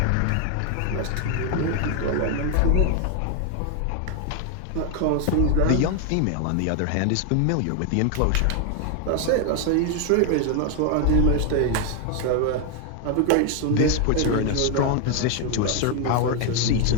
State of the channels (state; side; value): different; both; correlation 0.00